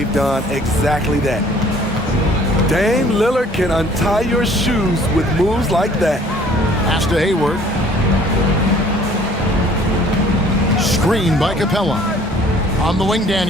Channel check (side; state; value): both; normal; correlation 0.55